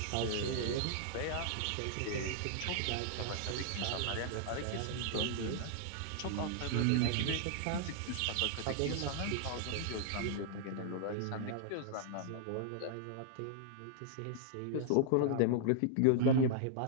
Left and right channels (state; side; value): different; both; correlation -0.01